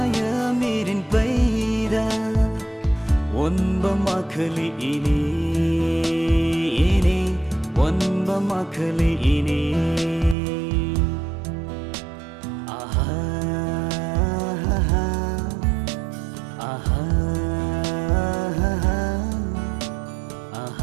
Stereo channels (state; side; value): drops out; left; at 10.4 s